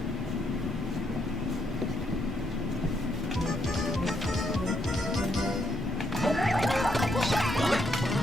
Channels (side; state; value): both; normal; correlation 0.75